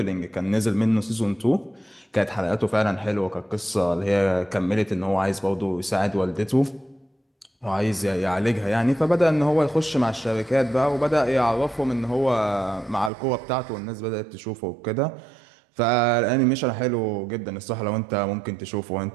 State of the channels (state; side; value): drops out; left; at 13.1 s